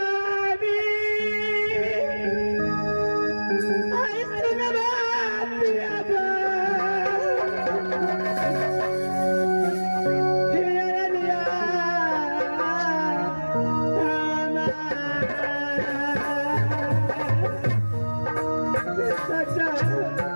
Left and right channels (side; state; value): both; inverted; correlation -1.00